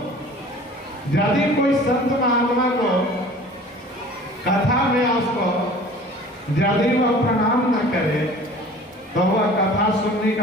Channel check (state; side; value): normal; both; correlation 0.45